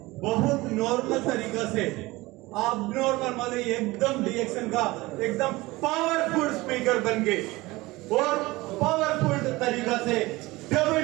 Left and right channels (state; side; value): quieter; left; 20.7 dB